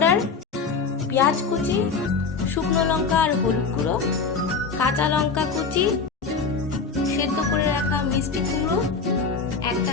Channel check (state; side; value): quieter; right; 4.9 dB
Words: পেঁয়াজ কুচি, শুকনো লঙ্কা আর হলুদ গুঁড়ো, কাঁচা লঙ্কা কুচি, সেদ্ধ করে রাখা মিষ্টি কুমড়ো,